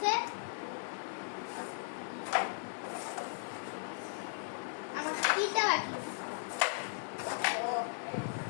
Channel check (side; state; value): right; silent; digital silence